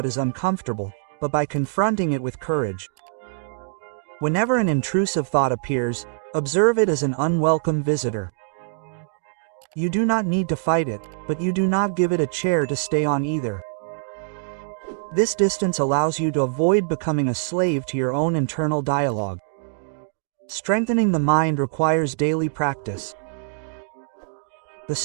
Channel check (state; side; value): silent; left; digital silence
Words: is uncomfortable, but by confronting it with courage. Whenever an intrusive thought appears, observe it as an unwelcome visitor. You do not need to fight it, but you do not give it a chair to stay on either. This distance allows you to avoid becoming a slave to your own internal dialogue. Strengthening the mind requires daily practice. The